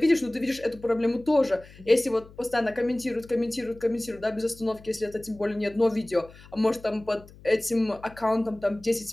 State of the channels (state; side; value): noise; left; hum, 21 dB below the sound